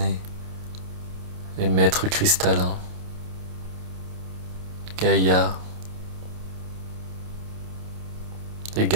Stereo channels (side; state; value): left; late; 28 ms